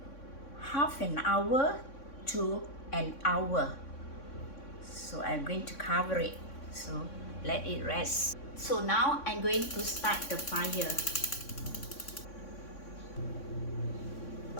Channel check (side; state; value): right; late; 3.6 ms